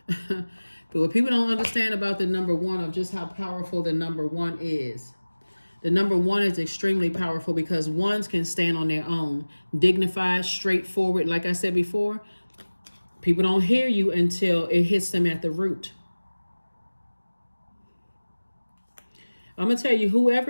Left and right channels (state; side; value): inverted; both; correlation -1.00